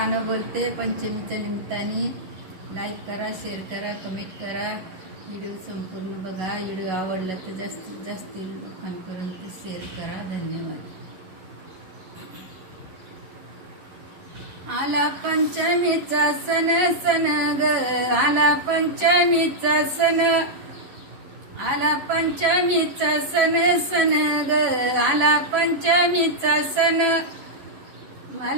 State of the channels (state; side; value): late; left; 11 ms